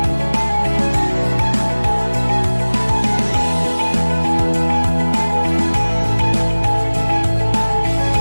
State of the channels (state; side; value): inverted; both; correlation -1.00